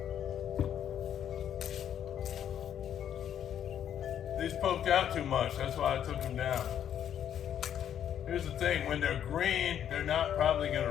poked out too much. That's why I took them down. Here's the thing, when they're green, they're not probably gonna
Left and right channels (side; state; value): right; quieter; 9.7 dB